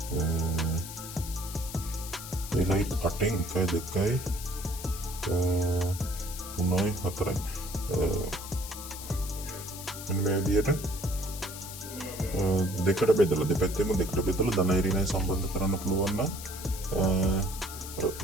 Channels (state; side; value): noise; left; hiss, 11 dB below the sound